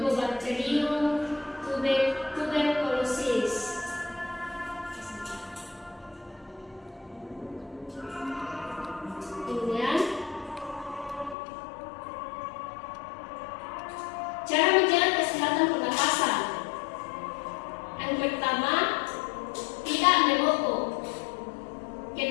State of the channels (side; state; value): right; drops out; at 11.4 s